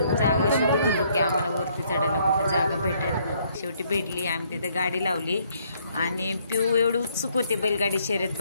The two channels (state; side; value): inverted; both; correlation -0.68